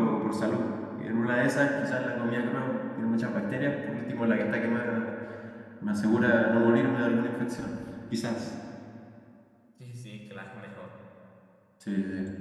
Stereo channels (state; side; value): identical; both; correlation 1.00